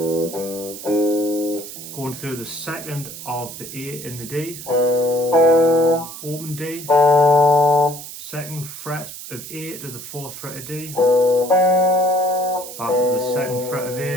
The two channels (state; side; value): noise; right; hiss, 12 dB below the sound